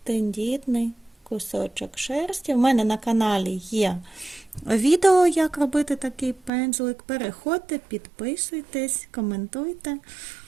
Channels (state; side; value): drops out; left; at 6.5 s